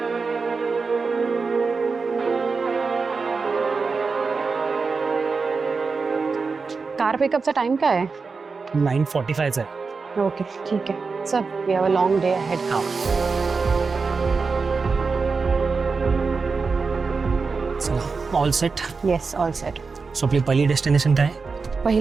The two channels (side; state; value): left; quieter; 4.6 dB